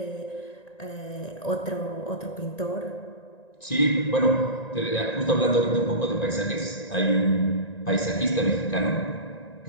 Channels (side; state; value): right; late; 1.9 ms